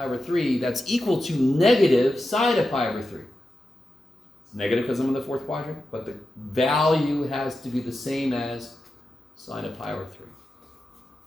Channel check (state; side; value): normal; both; correlation 0.90